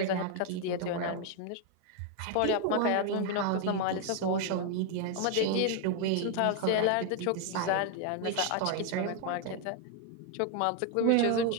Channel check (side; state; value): both; different; correlation 0.01